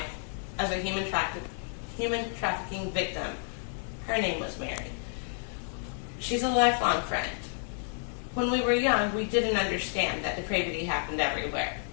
as a human trafficking victim. Her name was Mary. She's a lifelong friend. When we were young, we didn't understand that depravity happened everywhere.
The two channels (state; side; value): silent; right; 57 dB below the other